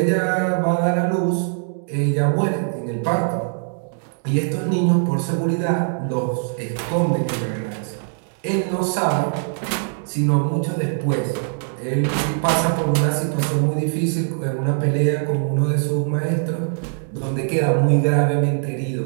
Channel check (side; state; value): left; silent; digital silence